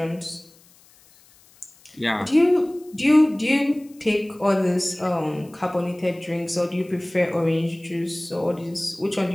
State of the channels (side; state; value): left; noise; hiss, 28 dB below the sound